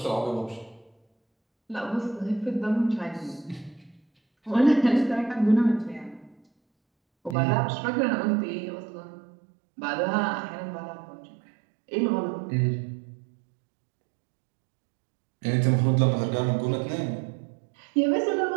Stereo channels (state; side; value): drops out; left; at 7.4 s